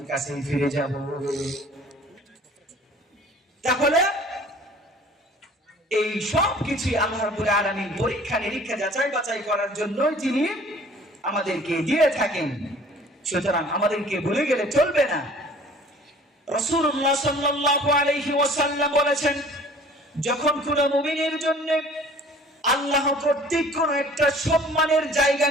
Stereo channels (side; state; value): both; normal; correlation 0.50